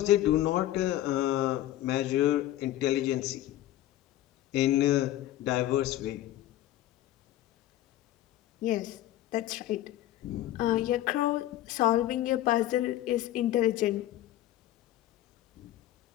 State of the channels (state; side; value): quieter; right; 14.1 dB